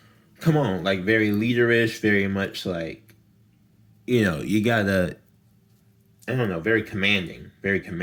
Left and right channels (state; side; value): identical; both; correlation 1.00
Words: come on, like very leaderish, very much like, you know, you gotta, I don't know, very commanding. Very